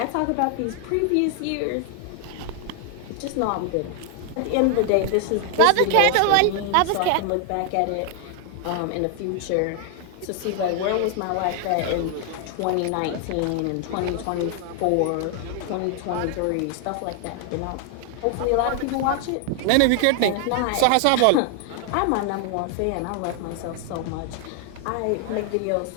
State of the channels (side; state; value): both; different; correlation 0.00